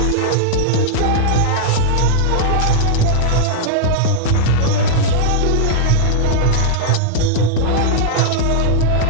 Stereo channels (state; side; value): different; both; correlation -0.01